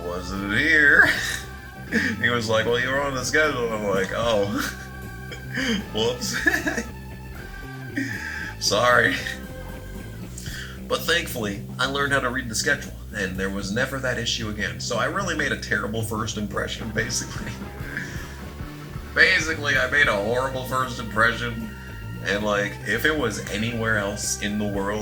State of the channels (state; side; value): identical; both; correlation 1.00